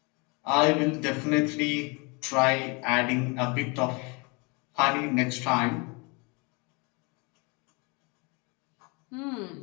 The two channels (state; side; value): quieter; right; 30.5 dB